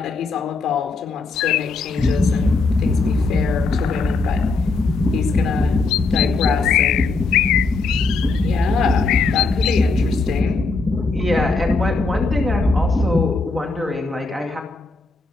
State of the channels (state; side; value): quieter; right; 3.8 dB